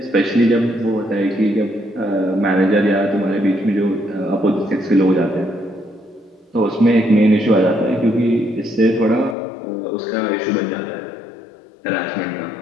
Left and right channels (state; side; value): drops out; right; at 9.3 s